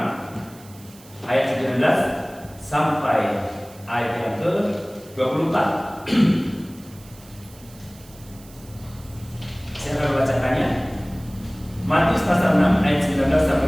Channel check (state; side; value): noise; right; hiss, 23 dB below the sound